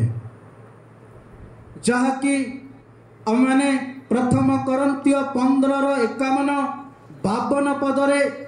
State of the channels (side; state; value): both; identical; correlation 1.00